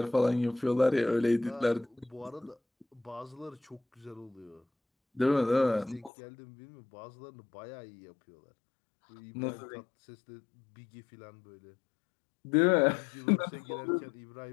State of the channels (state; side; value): drops out; right; at 6.1 s